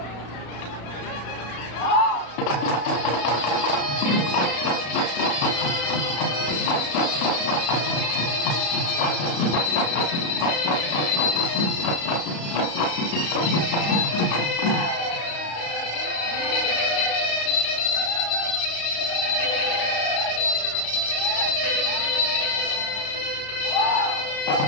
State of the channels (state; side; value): late; right; 35 ms